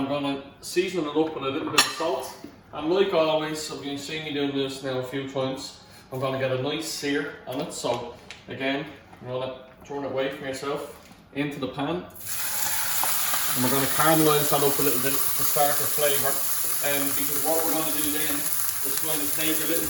going to season it up with a little bit of salt. And like always, so you've seen me doing this now a few times, I'm going to get a nice sear on it. So again, I'm going to turn it away from yourself into the pan. And we're going to caramelise that up a little bit to start the flavour. Because what we're going to do then is going to take a little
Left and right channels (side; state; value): both; identical; correlation 1.00